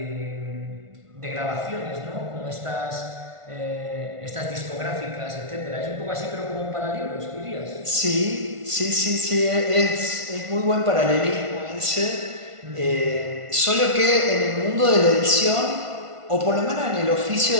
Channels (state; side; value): late; left; 1.5 ms